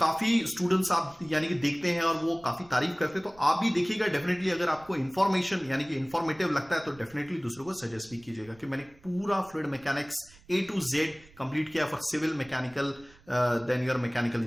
स्टूडेंट्स आप यानी कि देखते हैं और वो काफी तारीफ करते हैं, तो आप भी देखिएगा डेफिनेटली। अगर आपको इंफॉर्मेशन यानी कि इंफॉर्मेटिव लगता है तो डेफिनेटली दूसरों को सजेस्ट भी कीजिएगा कि मैंने पूरा fluid mechanics A to Z complete किया for civil mechanical then your mechanical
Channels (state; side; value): noise; right; rumble, 25 dB below the sound